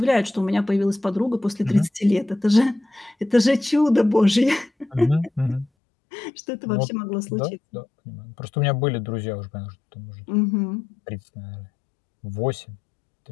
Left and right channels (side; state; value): right; drops out; at 5.7 s